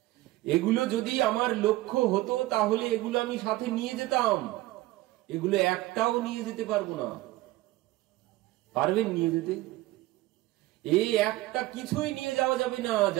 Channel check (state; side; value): quieter; left; 18.1 dB